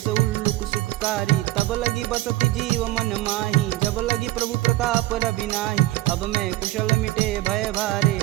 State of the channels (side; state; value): left; quieter; 17.0 dB